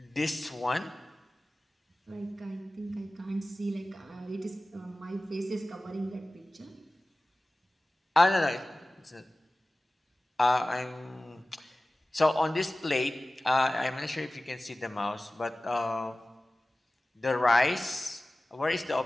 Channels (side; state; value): both; normal; correlation 0.97